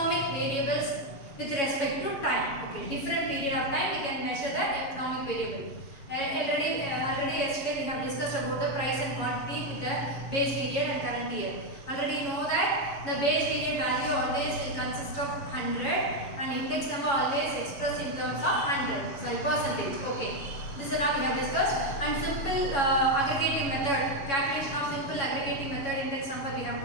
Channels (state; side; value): late; right; 7.2 ms